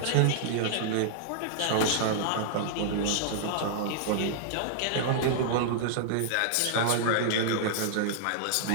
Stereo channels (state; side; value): different; both; correlation -0.01